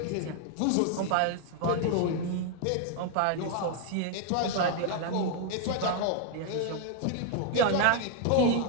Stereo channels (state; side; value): different; both; correlation 0.00